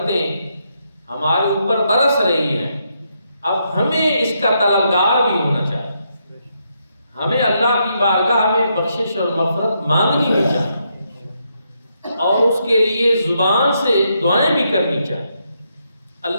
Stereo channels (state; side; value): inverted; both; correlation -0.79